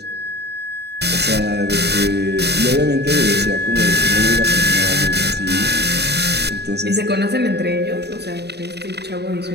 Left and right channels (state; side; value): late; left; 0.48 ms